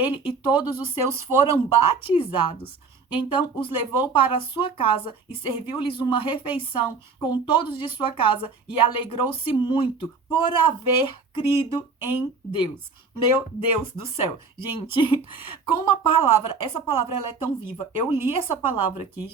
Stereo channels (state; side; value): quieter; left; 4.6 dB